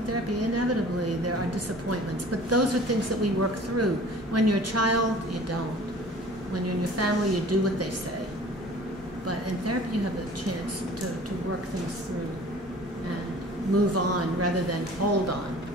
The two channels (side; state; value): both; normal; correlation 0.46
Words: therapy, inevitably there are disappointments, but those are things that we work through. When you're a child, you don't. When you're in your family, you do what they say. But in therapy, you have a chance to work things through and move on rather than hold on.